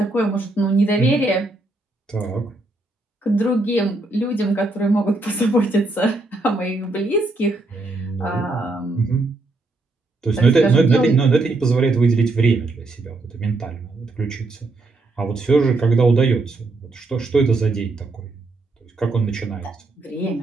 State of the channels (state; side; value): quieter; left; 3.1 dB